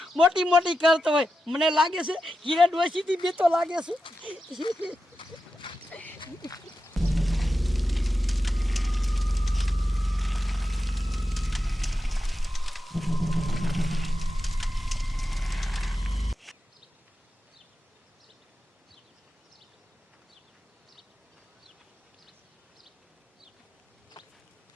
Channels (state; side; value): normal; both; correlation 0.90